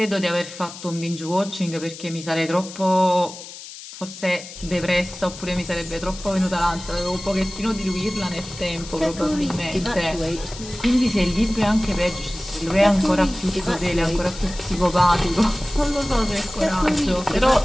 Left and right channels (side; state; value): left; noise; hiss, 14 dB below the sound